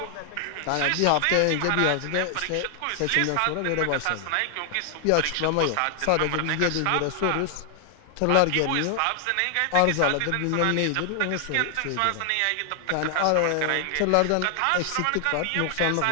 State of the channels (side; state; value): both; different; correlation 0.00